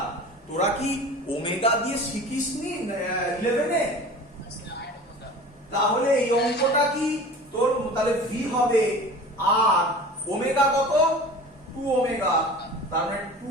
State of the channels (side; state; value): both; normal; correlation 0.39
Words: তোরা কি ওমেগা দিয়ে শিখিসনি 11 এ? তাহলে এই অঙ্কটা কি তোর, তাহলে ভি হবে আর ওমেগা কত? 2 ওমেগা, তার মানে